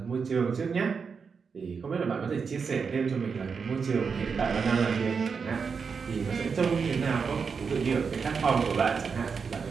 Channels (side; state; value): left; quieter; 5.6 dB